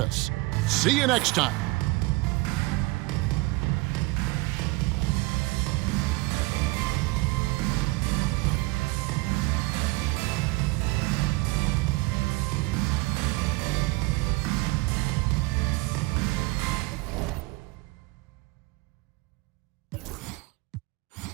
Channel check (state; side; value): quieter; left; 23.4 dB